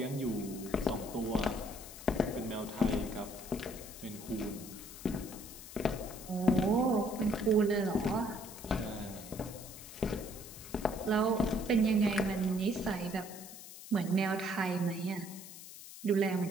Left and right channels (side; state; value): left; noise; hiss, 14 dB below the sound